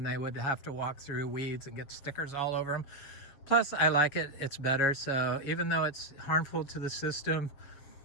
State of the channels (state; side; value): late; right; 7.4 ms